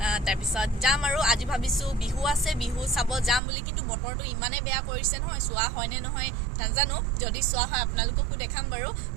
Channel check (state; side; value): drops out; left; at 3.4 s